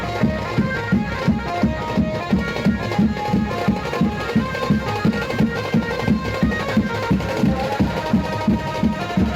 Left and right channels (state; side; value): identical; both; correlation 1.00